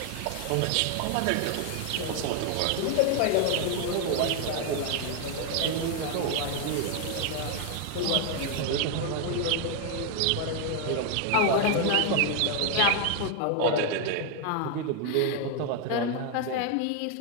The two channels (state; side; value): different; both; correlation 0.01